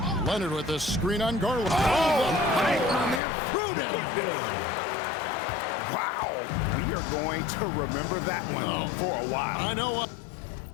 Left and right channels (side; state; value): right; drops out; at 3.2 s